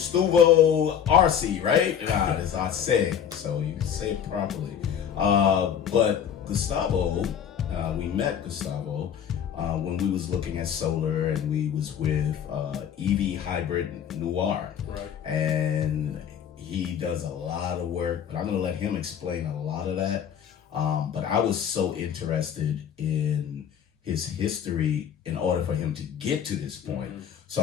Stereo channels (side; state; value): right; quieter; 8.7 dB